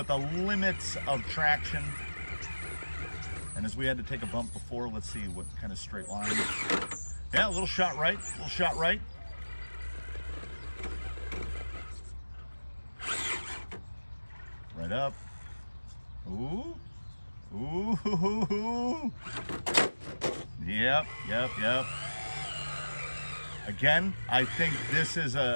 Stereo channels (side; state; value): both; inverted; correlation -1.00